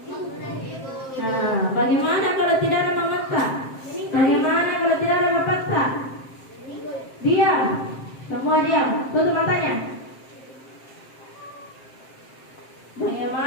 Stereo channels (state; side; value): late; right; 7.6 ms